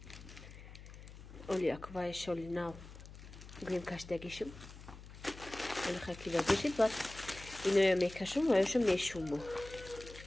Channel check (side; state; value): left; noise; hum, 15 dB below the sound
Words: оли як ва иша оли нав гӯем каштагишим оли хакида бешид баъд иноя мекашум ва иша мешумо